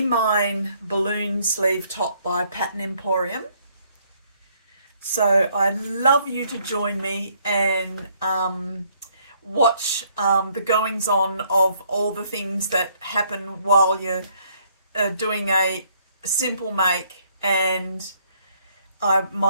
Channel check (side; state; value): both; inverted; correlation -0.67